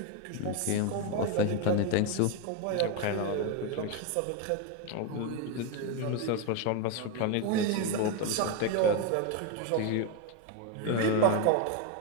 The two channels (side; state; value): both; different; correlation 0.02